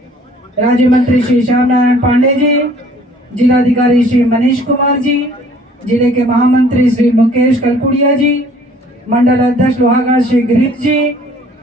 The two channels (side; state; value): both; normal; correlation 0.55